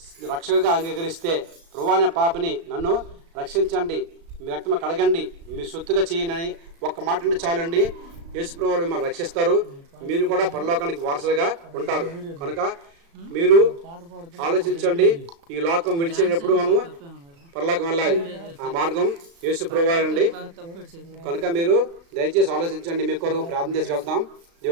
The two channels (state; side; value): late; left; 36 ms